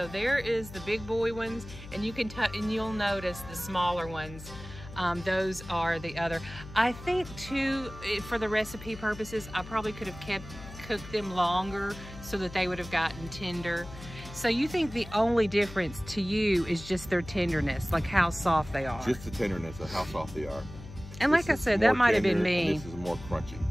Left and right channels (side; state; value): left; noise; hum, 14 dB below the sound